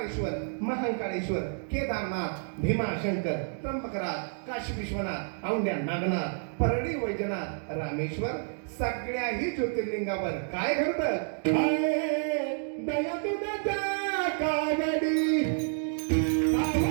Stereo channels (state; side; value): silent; left; 58 dB below the other